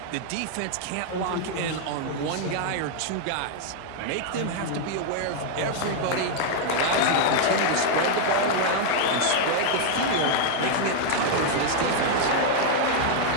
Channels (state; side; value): different; both; correlation 0.00